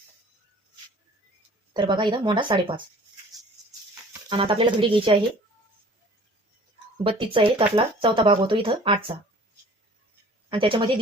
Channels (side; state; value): both; normal; correlation 0.49